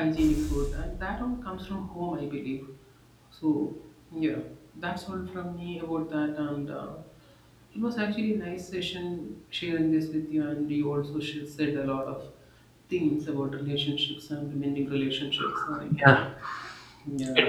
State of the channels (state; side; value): identical; both; correlation 1.00